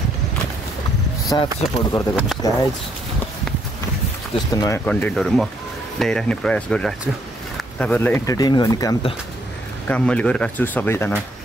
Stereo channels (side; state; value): both; normal; correlation 0.71